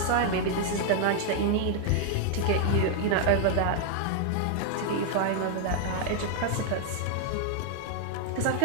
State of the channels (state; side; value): different; both; correlation 0.00